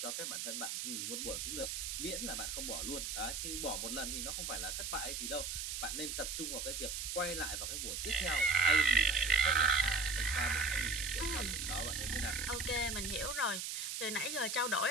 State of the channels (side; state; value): right; noise; hiss, 3 dB below the sound